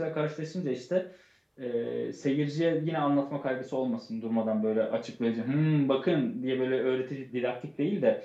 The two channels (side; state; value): both; identical; correlation 1.00